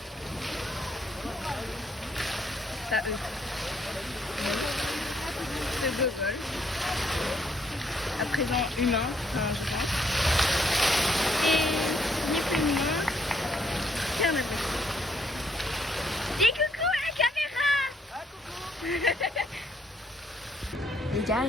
Ça eux. Ce gogol. À présent humain, je pense. Et ni plus ni moins qu'un abruti. Dis coucou à la caméra. Les gars,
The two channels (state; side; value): normal; both; correlation 0.70